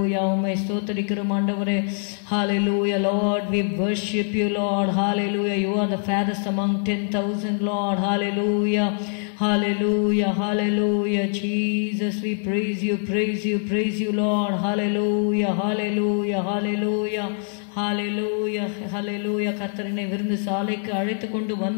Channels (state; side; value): silent; right; 63 dB below the other